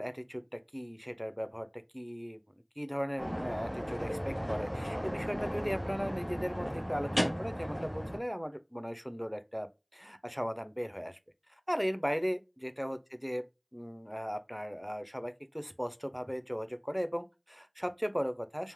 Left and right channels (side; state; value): both; identical; correlation 1.00